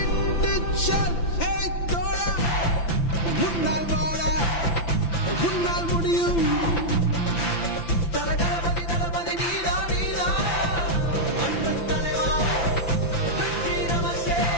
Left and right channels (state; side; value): late; right; 5.9 ms